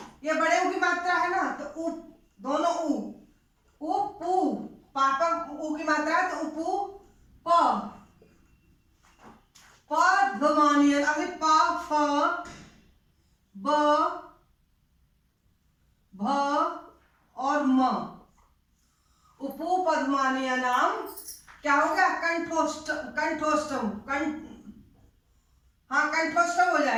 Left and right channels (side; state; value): both; identical; correlation 1.00